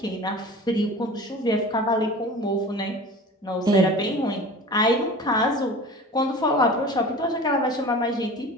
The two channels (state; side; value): normal; both; correlation 0.38